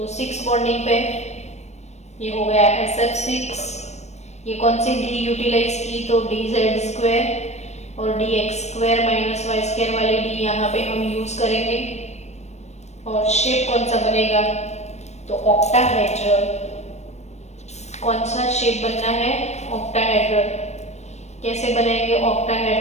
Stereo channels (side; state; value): right; late; 0.32 ms